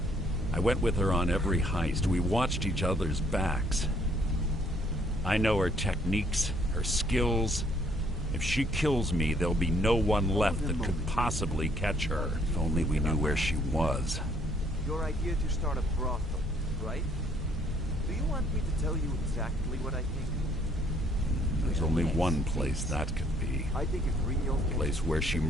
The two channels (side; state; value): both; normal; correlation 0.65